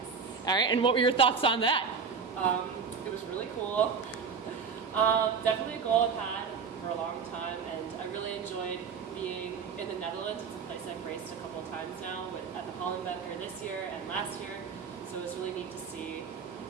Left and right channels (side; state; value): left; quieter; 5.9 dB